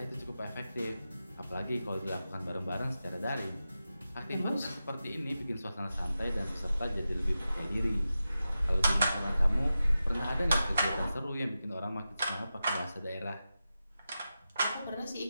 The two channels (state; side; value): inverted; both; correlation -0.92